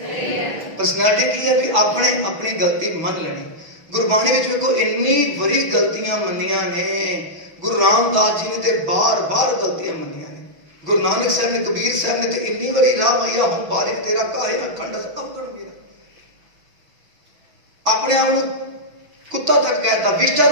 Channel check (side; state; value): left; late; 6.1 ms